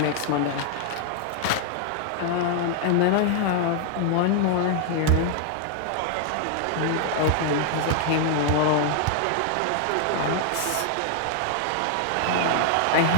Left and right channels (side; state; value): both; different; correlation 0.00